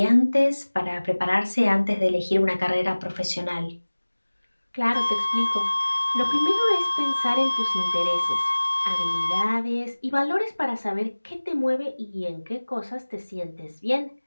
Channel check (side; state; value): both; inverted; correlation -1.00